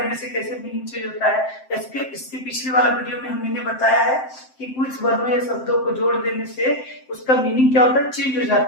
से कैसे मीनिंग चेंज होता है। इसके पिछले वाला वीडियो में मैंने बताया है कि कुछ वर्णों या शब्दों को जोड़ देने से उसका मीनिंग क्या होता है, चेंज हो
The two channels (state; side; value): late; right; 7.7 ms